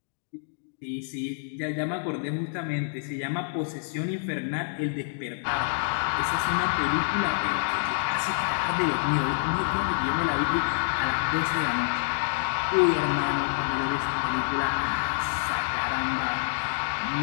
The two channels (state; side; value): silent; right; digital silence